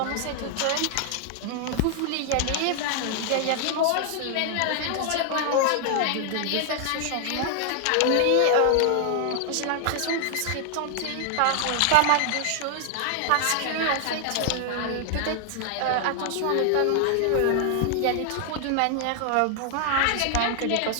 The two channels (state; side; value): different; both; correlation 0.00